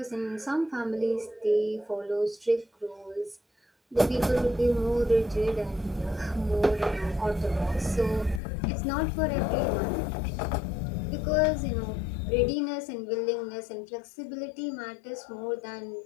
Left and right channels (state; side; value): drops out; right; at 8.4 s